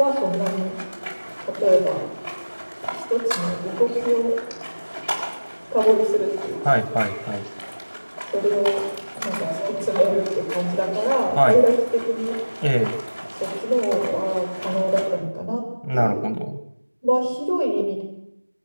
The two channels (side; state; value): both; inverted; correlation -1.00